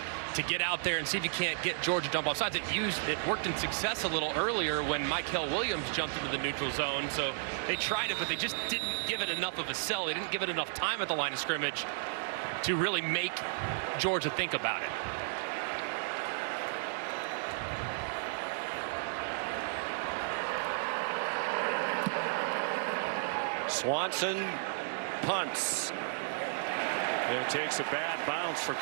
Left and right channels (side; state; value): left; silent; digital silence